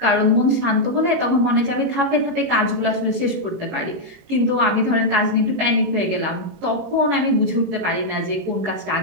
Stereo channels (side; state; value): left; late; 18 ms